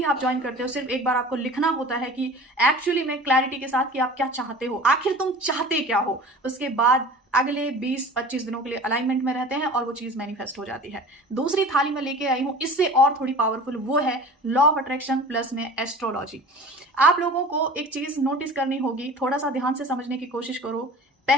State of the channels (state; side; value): normal; both; correlation 0.40